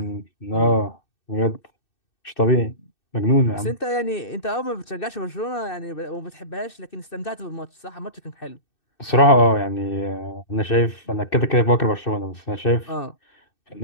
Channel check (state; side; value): late; right; 2.6 ms